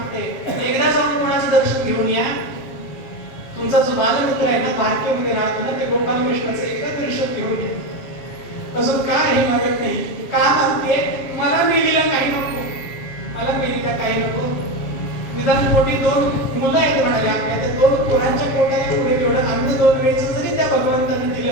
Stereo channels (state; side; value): late; right; 7.5 ms